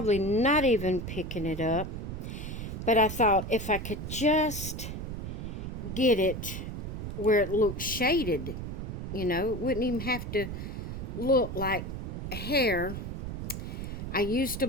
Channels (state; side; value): noise; right; rumble, 6 dB below the sound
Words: not even picking it up. But I thought if I could just get it where it looks shaded, you know, it wouldn't even have to look like hair. I used a